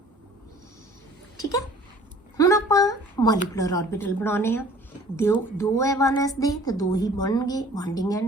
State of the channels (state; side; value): normal; both; correlation 0.51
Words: ठीक है। हुण आपां मॉलिकुलर ऑर्बिटल बनाने आ। दो है 1s दे तो दो ही बनणगे, bonding